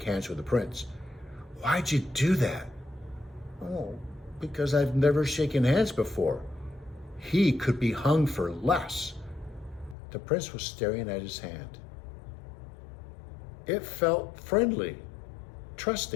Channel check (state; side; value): drops out; right; at 10.0 s